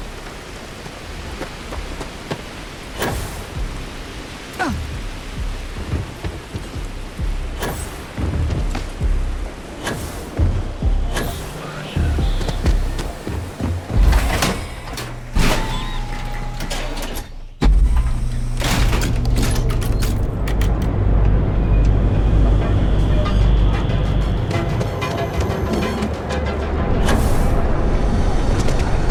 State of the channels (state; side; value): identical; both; correlation 1.00